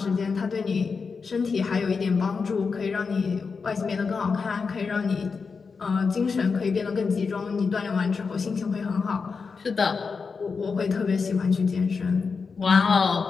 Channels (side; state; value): right; quieter; 5.1 dB